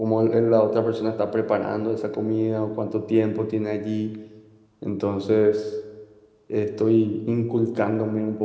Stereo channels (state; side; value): identical; both; correlation 1.00